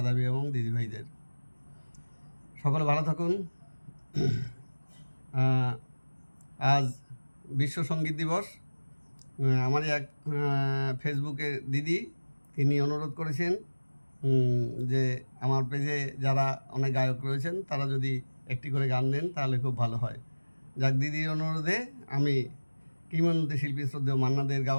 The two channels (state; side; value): inverted; both; correlation -1.00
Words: এবং দিদিভাইদের সকলে ভালো থাকুন। আজ বিশ্ব সঙ্গীত দিবস। আমারই এক ফেসবুকে দিদি তিনি অনুরোধ করেছেন যে আমার পেজে যারা অনেক গায়ক রয়েছেন তারা যদি একটি করে গান দেন তাহলে খুব ভালো হয়। যাক, দিদির অনুরোধে আমি কিংবদন্তি শিল্পী শ্রদ্ধেয় মান্না দের